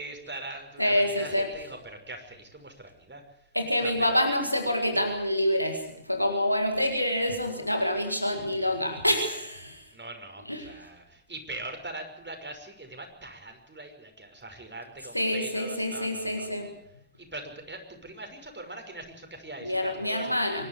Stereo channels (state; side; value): inverted; both; correlation -0.79